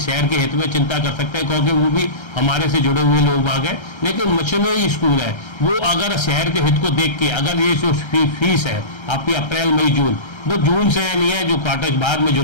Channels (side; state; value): right; late; 1.3 ms